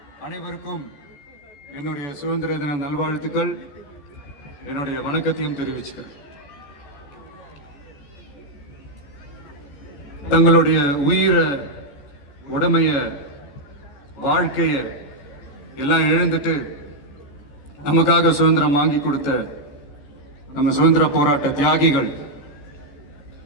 அனைவருக்கும் என்னுடைய சுதந்திர தின நல்வாழ்த்துக்கள், என்னுடைய வணக்கத்தையும் தெரிவிச்சுக்கிறேன். தங்களுடைய உயிரை, உடமைய, வாழ்க்கைய எல்லாம் இழந்துட்டு நமக்காக சுதந்திரம் வாங்கி கொடுத்த நம்ம சுதந்திர போராட்ட தியாகிகள்,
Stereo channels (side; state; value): right; late; 14 ms